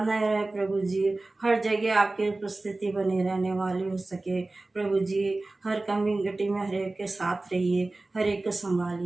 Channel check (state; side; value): quieter; left; 3.1 dB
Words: रहे प्रभु जी, हर जगह आपकी उपस्थिति बनी रहने वाली हो सके। प्रभु जी हर कमी घटी में हर एक के साथ रहिए, हर एक को